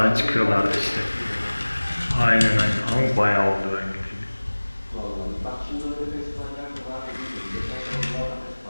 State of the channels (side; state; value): both; inverted; correlation -1.00